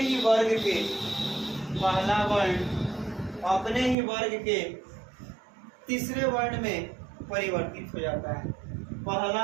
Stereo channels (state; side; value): drops out; left; at 4.0 s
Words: ही वर्ग के तीसरे वर्ण में परिवर्तित हो जाता है।